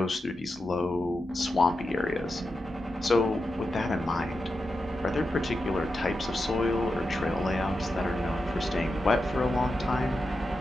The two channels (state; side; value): normal; both; correlation 0.89